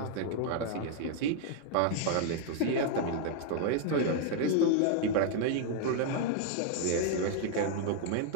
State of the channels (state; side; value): different; both; correlation 0.00